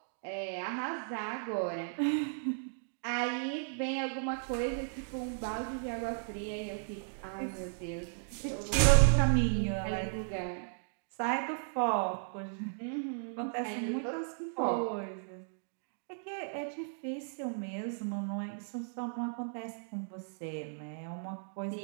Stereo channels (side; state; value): left; silent; digital silence